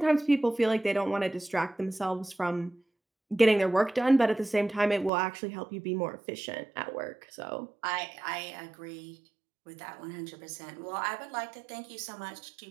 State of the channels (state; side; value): drops out; left; at 5.1 s